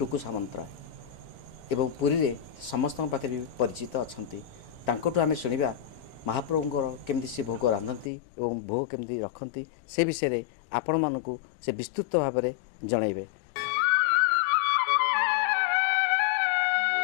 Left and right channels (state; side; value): drops out; right; at 8.1 s